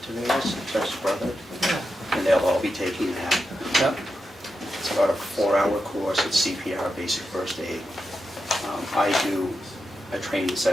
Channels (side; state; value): both; normal; correlation 0.88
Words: Tavares, Jeff's brother, yeah. and they'll all be taking that. yeah, It's about a 4-hour course at CPR, basic first aid. I do a training